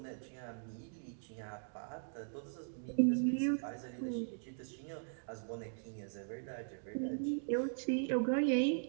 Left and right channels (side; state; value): left; silent; digital silence